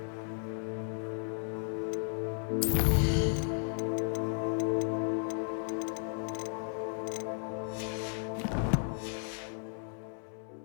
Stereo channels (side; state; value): right; silent; 55 dB below the other